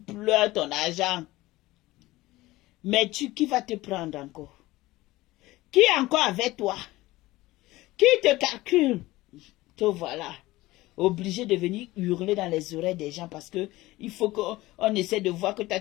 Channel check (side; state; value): right; quieter; 18.5 dB